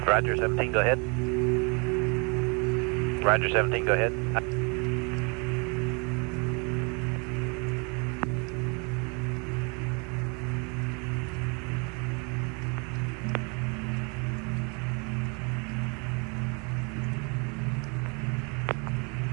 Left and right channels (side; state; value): left; quieter; 33.2 dB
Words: Roger, 17, go ahead. Roger, 17, go ahead.